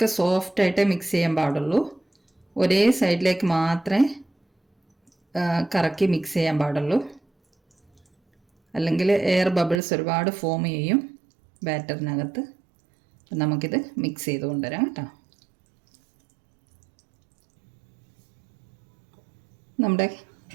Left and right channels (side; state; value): left; drops out; at 9.8 s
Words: സോഫ്റ്റായിട്ടേ മിക്സ് ചെയ്യാൻ പാടുള്ളൂ. ഒരേ സൈഡിലേക്ക് മാത്രമേ കറക്കി മിക്സ് ചെയ്യാൻ പാടുള്ളൂ. അല്ലെങ്കിൽ എയർ ബബിൾസ് ഒരുപാട് ഫോം ചെയ്യും ബാറ്ററിനകത്ത്. അപ്പം നമുക്കിത് മിക്സ് ചെയ്ത് കൊണ്ടുവരാം കേട്ടോ. നമ്മുടെ